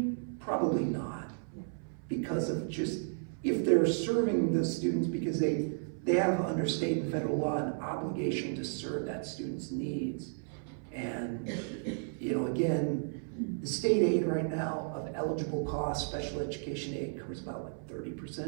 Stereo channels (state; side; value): silent; left; 55 dB below the other